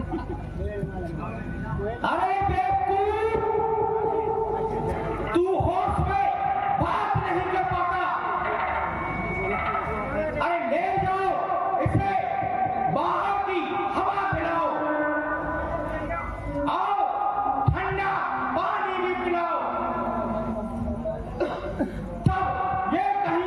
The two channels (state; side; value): identical; both; correlation 1.00